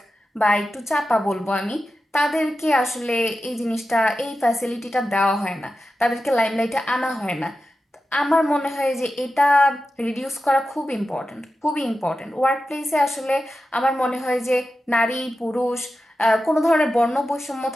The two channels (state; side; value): normal; both; correlation 0.92